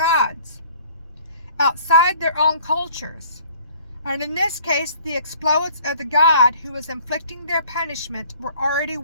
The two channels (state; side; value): inverted; both; correlation -0.54